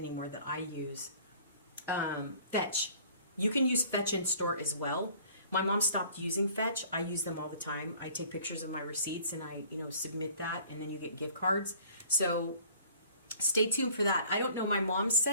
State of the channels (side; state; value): both; inverted; correlation -0.53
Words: that I use. Fetch. You can use Fetch in store as well. My mom stopped using Fetch. I use them all the time. I take pictures of my receipts and I, submit that, and then you get gift cards. So stay tuned for that. I don't know. My mom